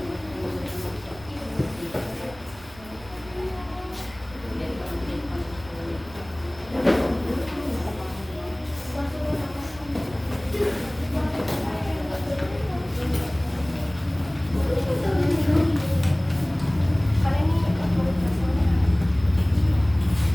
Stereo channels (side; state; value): right; noise; rumble, 21 dB below the sound